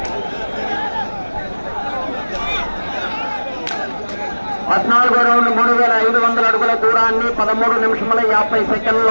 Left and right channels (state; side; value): inverted; both; correlation -1.00